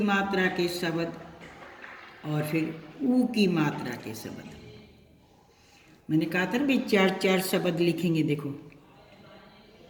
मात्रा के शब्द और फिर ऊ की मात्रा के शब्द। मैंने कहा था भाई 4-4 शब्द लिखेंगे। देखो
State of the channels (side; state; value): both; identical; correlation 1.00